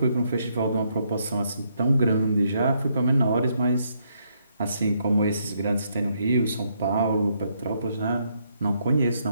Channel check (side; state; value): both; inverted; correlation -0.74